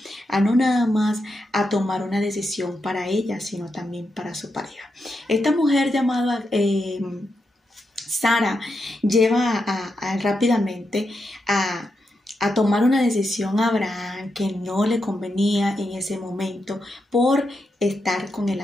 a no nada más a tomar una decisión para ella, sino también para su pareja. Esta mujer llamada Sara lleva rápidamente a tomar una decisión a Abraham que no le convenía en ese momento por estar con el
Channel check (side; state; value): both; normal; correlation 0.85